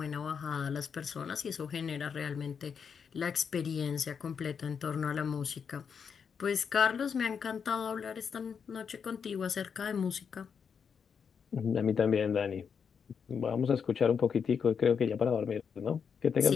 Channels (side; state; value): right; quieter; 6.6 dB